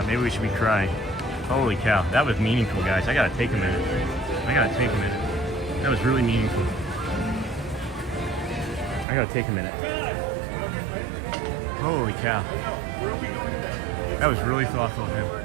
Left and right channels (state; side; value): drops out; left; at 9.1 s